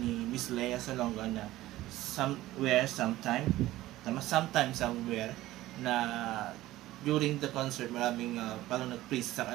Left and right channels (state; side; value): quieter; left; 16.2 dB